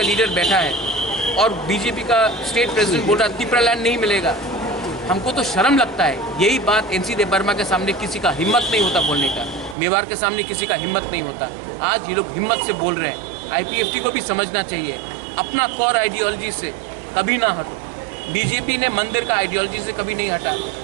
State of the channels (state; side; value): drops out; left; at 9.8 s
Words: लीडर बैठा है और बीजेपी का स्टेट प्रेसिडेंट बोल रहा है त्रिपुरालैंड नहीं मिलेगा। हमको तो शर्म लगता है। यही बात एनसी देव वर्मा के सामने किसी का हिम्मत नहीं होता बोलने का, मेवाड़ के सामने किसी का हिम्मत नहीं होता। आज ये लोग हिम्मत से बोल रहे हैं। आईपीएफटी को भी समझना चाहिए, अपना कोर आइडियोलॉजी से कभी ना हटो। बीजेपी ने मंदिर का आइडियोलॉजी से कभी नहीं हटा,